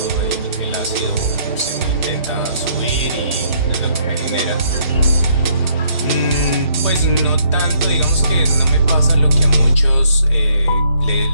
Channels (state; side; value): inverted; both; correlation -0.68